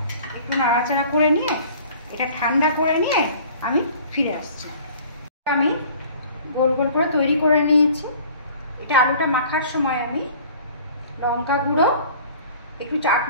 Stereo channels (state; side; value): inverted; both; correlation -0.49